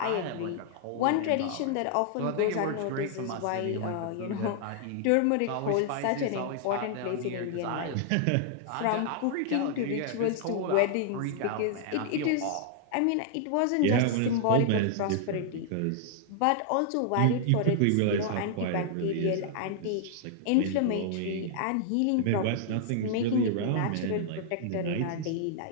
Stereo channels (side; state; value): both; different; correlation -0.01